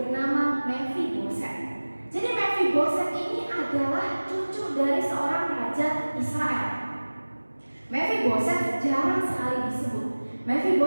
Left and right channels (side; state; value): both; inverted; correlation -1.00